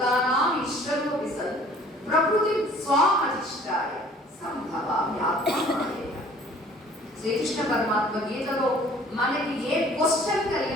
ఈశ్వరోపి సన్ ప్రకృతి స్వామధిష్టాయ సంభవామ్యాత్మమాయేన. శ్రీకృష్ణ పరమాత్మ గీతలో మనకి ఏ క్వశ్చన్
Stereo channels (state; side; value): normal; both; correlation 0.53